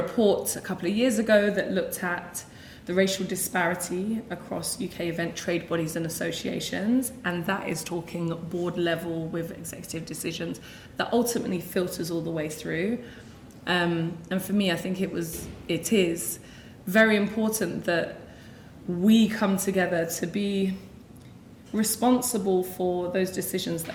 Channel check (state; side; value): identical; both; correlation 1.00